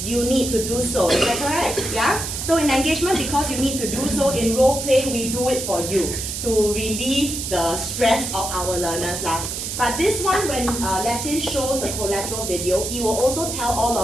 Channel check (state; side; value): noise; right; hiss, 5 dB below the sound